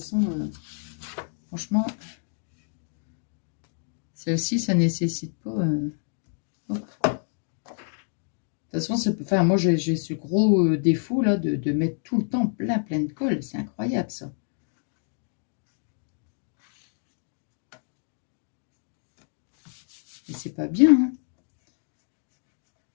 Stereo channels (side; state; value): right; silent; digital silence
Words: franchement, celle-ci, ça nécessite pas... De toute façon, enfin, moi, j'ai ce gros défaut là de mettre tout le temps plein de colle. C'est incroyable, ça. Et c'est pas bien, hein.